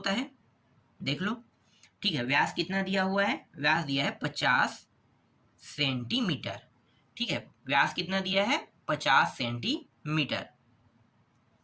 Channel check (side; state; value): both; identical; correlation 1.00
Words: है, देख लो। ठीक है, व्यास कितना दिया हुआ है, व्यास दिया है 50 सेंटीमीटर। ठीक है, व्यास कितना दिया है, 50 सेंटीमीटर।